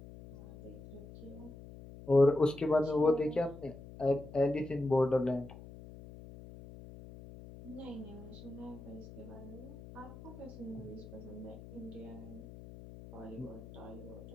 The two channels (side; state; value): left; noise; hum, 15 dB below the sound